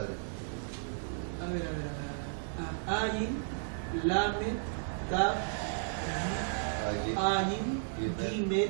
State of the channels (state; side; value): silent; left; 55 dB below the other